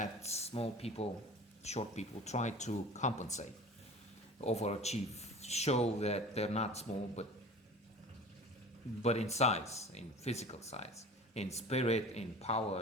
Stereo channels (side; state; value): both; normal; correlation 0.39